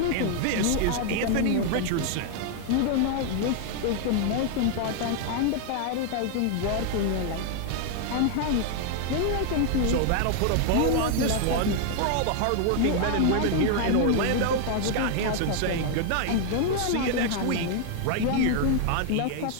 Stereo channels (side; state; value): both; different; correlation 0.00